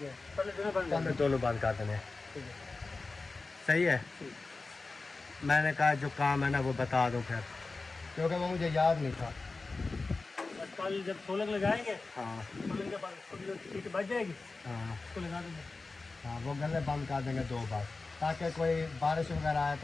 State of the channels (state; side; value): quieter; right; 3.7 dB